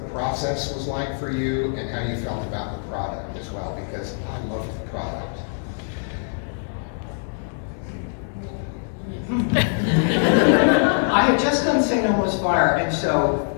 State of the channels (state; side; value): silent; right; digital silence